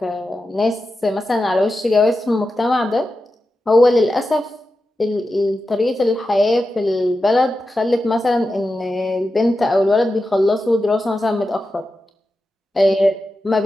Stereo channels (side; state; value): both; normal; correlation 0.91